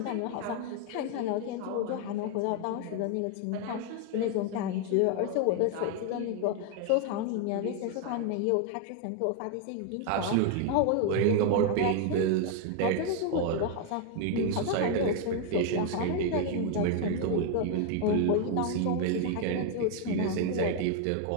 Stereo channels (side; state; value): both; different; correlation 0.00